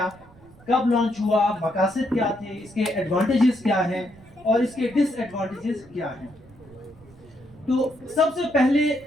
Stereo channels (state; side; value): noise; right; rumble, 25 dB below the sound